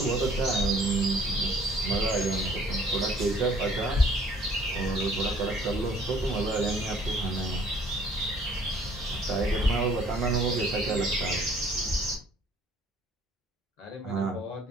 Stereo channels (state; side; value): normal; both; correlation 0.58